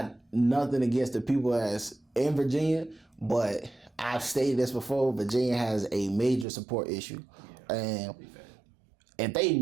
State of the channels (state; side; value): drops out; left; at 6.5 s